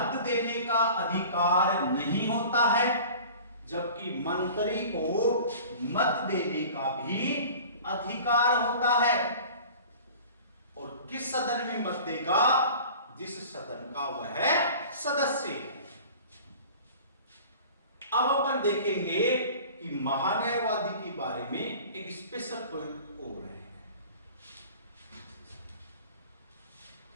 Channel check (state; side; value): inverted; both; correlation -0.43